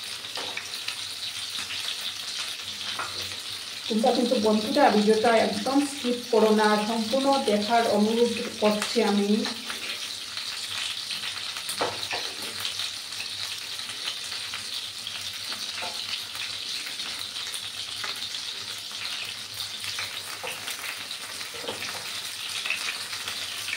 তোমরা কিন্তু বন্ধুরা ভিডিওটা একদম স্কিপ করো না, সম্পূর্ণ দেখার অনুরোধ করছি আমি।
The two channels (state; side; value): identical; both; correlation 1.00